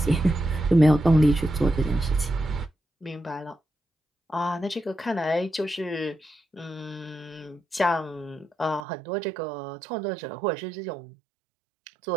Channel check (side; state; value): left; drops out; at 8.8 s